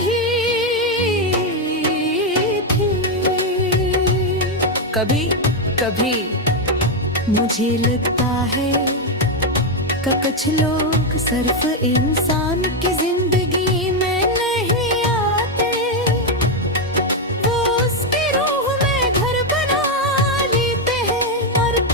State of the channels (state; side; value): normal; both; correlation 0.04